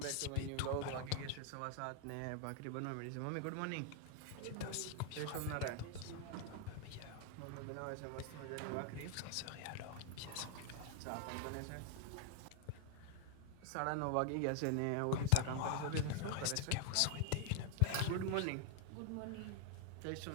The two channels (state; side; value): different; both; correlation 0.00